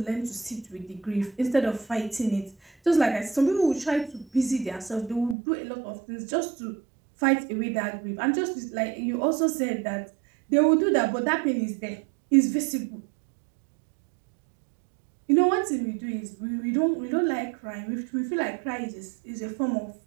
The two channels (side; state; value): left; drops out; at 5.4 s